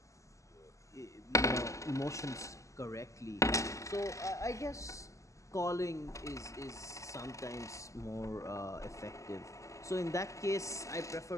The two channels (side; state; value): right; late; 0.15 ms